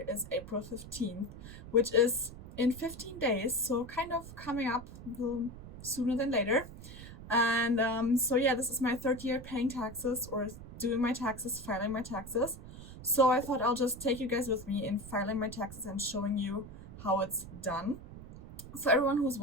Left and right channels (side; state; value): right; noise; rumble, 14 dB below the sound